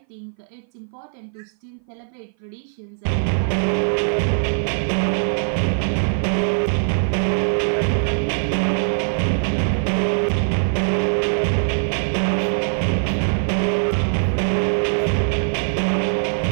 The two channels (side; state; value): left; silent; 58 dB below the other